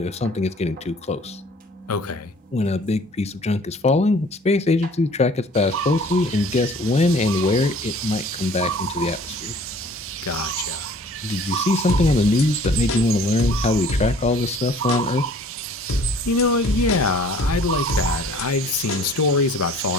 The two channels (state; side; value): normal; both; correlation 0.52